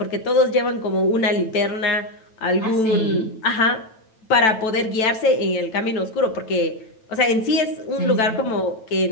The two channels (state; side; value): late; right; 9.1 ms